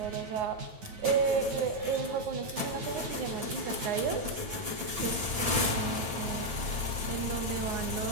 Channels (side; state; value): left; late; 8.8 ms